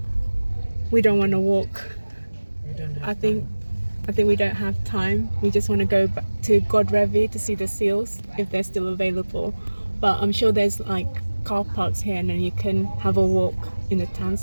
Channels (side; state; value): both; inverted; correlation -1.00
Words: we don't want to walk. I think we don't have time. We just want to go back to Godrevy to see the seals, if they're still available. But I'm sure there's like car parks here, and then you can have a walk in the town